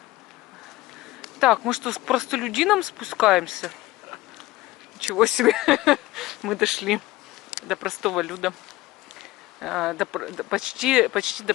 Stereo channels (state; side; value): quieter; right; 18.2 dB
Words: Так, мы что, с простолюдином спускаемся? Ничего себе. Мы дошли до простого люда. Почти до